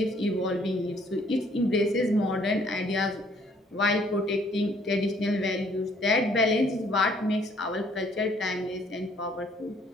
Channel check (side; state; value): both; normal; correlation 0.62